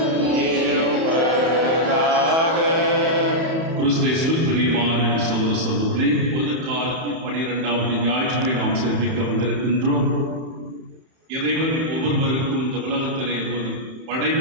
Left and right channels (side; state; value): left; late; 31 ms